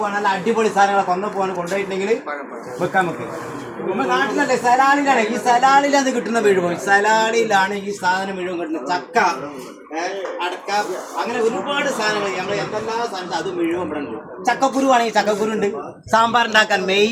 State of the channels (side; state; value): both; identical; correlation 1.00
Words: നല്ല അടിപൊളി സാധനങ്ങളെ കൊന്നപ്പൂവാണ്. കൊണ്ടുപോയിട്ടുണ്ടെങ്കിൽ വെക്കാൻ വെക്കുക. നമ്മുടെ നാട്ടിലല്ലേ സലാലിലാണ്. ഈ സലാലിലാണ് കിട്ടുന്ന വീഴുമ്പോൾ. സലാലിലാണ് ഈ സാധനം മുഴുവൻ കിട്ടുന്നത്. ചക്ക, അടക്ക, അങ്ങനെ ഒരുപാട് സാധനങ്ങൾ. നമ്മൾ എന്തെല്ലാം സാധനം അത് മുഴുവൻ ഇവിടെ ഉണ്ട്. ചക്കക്കുരു ആണെങ്കിൽ ചക്കക്കുരു ഉണ്ട്. സാമ്പാർ ഉണ്ടാക്കാൻ